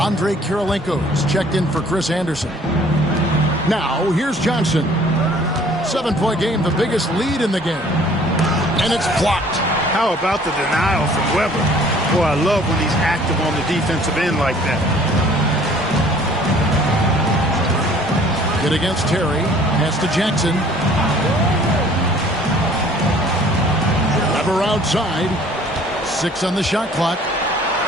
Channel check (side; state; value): both; normal; correlation 0.54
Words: Kirilenko's checked in for Chris Anderson. Now, here's Johnson. 7-point game, the biggest lead in the game. And it's blocked. How about the denial from Weber? Boy, I love when he's active on the defensive end like that. Good against Terry. Pass to Jackson. Weber outside. 6 on the shot clock.